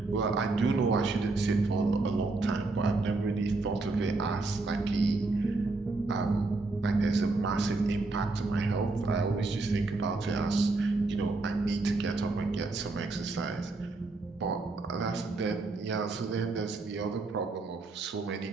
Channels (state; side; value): quieter; left; 3.4 dB